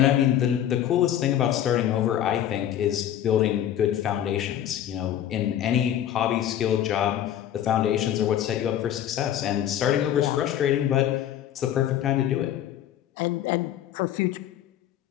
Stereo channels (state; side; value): quieter; right; 11.0 dB